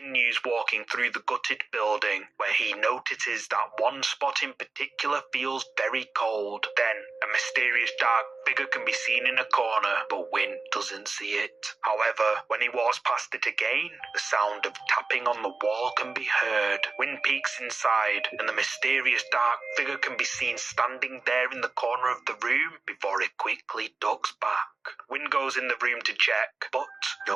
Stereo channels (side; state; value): left; quieter; 3.9 dB